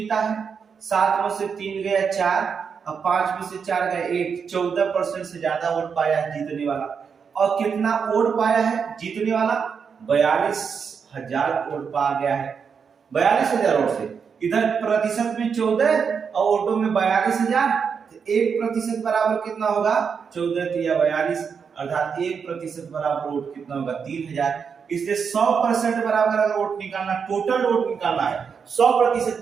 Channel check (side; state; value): left; quieter; 6.3 dB